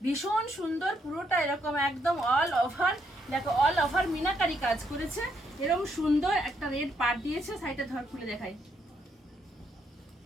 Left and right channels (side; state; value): both; normal; correlation 0.75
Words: ভীষণ সুন্দর। পুরোটা এরকম একদম অল ওভার, দেখো অল ওভার মিনাকারি কাজ করেছে। এরকম সুন্দর একটা রেড পাট দিয়েছে, সাইডে ধর খুলে দেখাই,